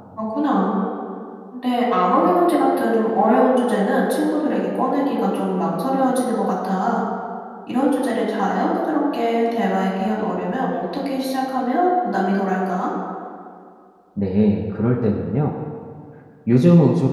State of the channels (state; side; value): identical; both; correlation 1.00